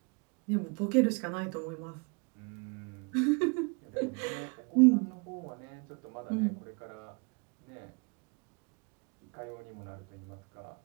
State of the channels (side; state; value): left; quieter; 32.5 dB